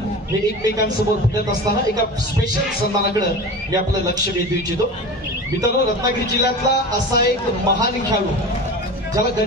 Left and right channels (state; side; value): normal; both; correlation 0.32